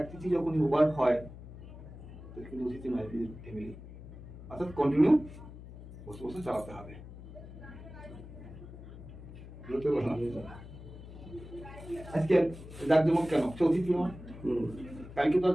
তিথি যখন ওভার হয় কিন্তু অতিথি নয়, ফ্যামিলি। অর্থাৎ কন্টিনিউ বসে বসে চালাতে হবে। আজকে জাকজমক কেন? সে অতিথি হয়, কালকে তো আর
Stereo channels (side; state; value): left; noise; hum, 14 dB below the sound